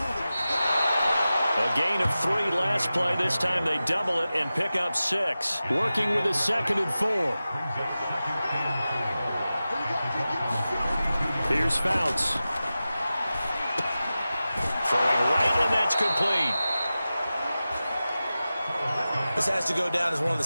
A gain of 3 last play. This time they double it and pick up 6. Working with a 2nd and 4. Here's Fouts. Throwing right, and that's complete. This has to go down as one of the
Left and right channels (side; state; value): both; inverted; correlation -0.95